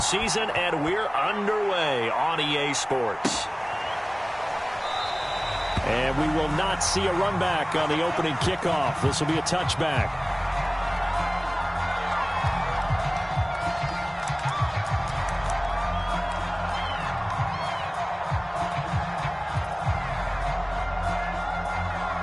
and we're underway on EA Sports. And we will not see a run back on the opening kickoff. This will be a touchback.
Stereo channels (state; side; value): identical; both; correlation 1.00